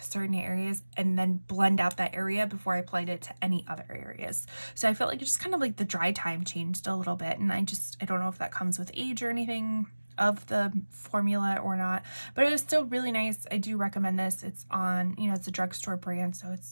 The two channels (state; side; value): inverted; both; correlation -1.00